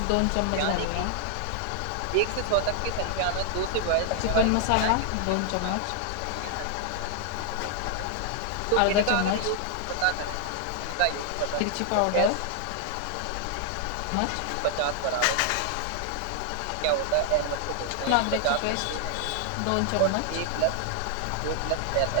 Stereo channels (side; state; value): both; different; correlation 0.00